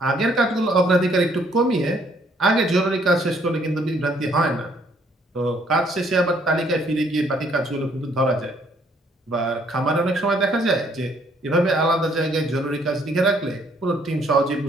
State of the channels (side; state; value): both; normal; correlation 0.65